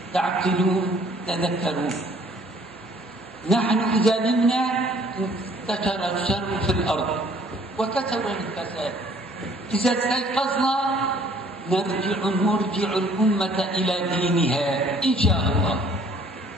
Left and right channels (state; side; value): normal; both; correlation 0.58